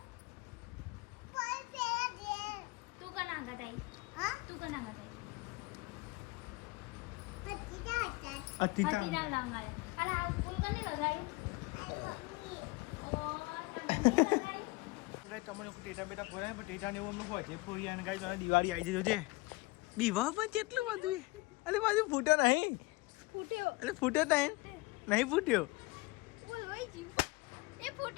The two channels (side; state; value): right; quieter; 24.0 dB